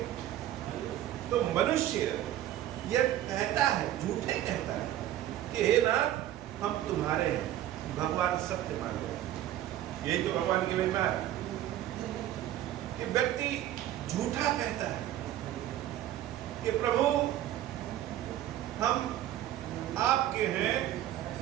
तो मनुष्य यह कहता है, झूठे कहता है कि हे नाथ हम तुम्हारे हैं, भगवान सत्य मान गए। यही तो भगवान की महिमा है कि व्यक्ति झूठा कहता है कि प्रभु हम आपके हैं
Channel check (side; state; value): left; quieter; 12.8 dB